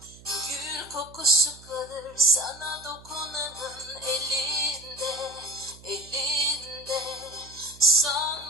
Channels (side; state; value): right; noise; hum, 21 dB below the sound